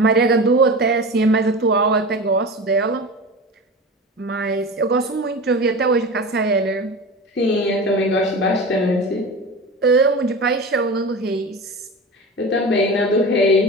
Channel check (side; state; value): both; normal; correlation 0.30